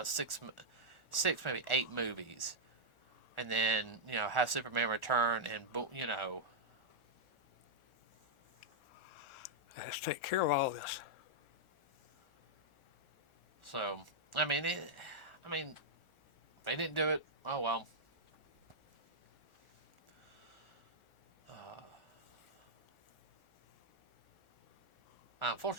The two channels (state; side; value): late; right; 1.4 ms